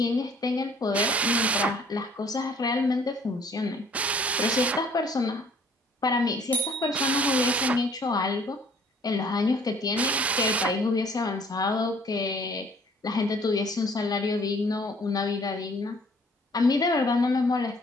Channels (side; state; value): both; normal; correlation 0.57